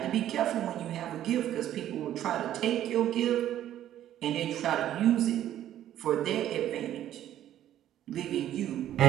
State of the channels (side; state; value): left; quieter; 11.9 dB